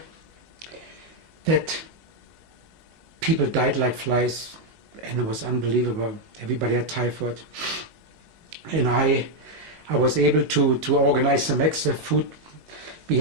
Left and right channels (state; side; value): late; left; 19 ms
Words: that people died like flies, and it was unbelievable. Everybody had typhoid. And I was able to organize some extra food. We